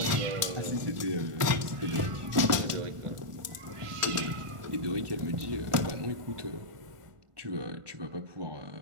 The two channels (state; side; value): late; left; 1.5 ms